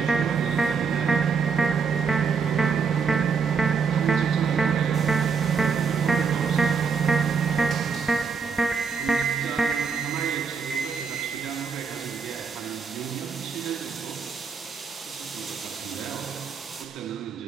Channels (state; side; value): quieter; left; 5.6 dB